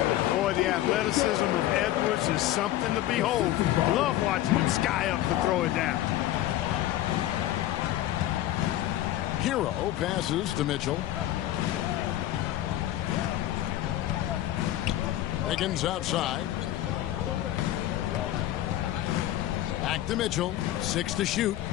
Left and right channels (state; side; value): quieter; right; 13.8 dB